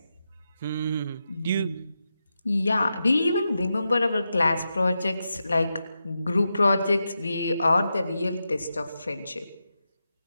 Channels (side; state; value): both; inverted; correlation -0.88